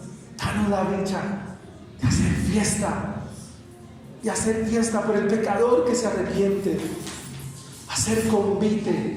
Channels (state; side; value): identical; both; correlation 1.00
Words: Danos la dicha de hacer fiesta. Y hacer fiesta por el pecador que se arrepiente, hacer